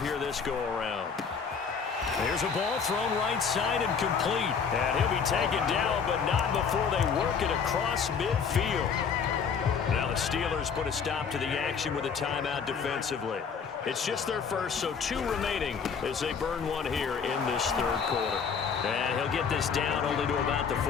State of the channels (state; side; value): quieter; right; 6.2 dB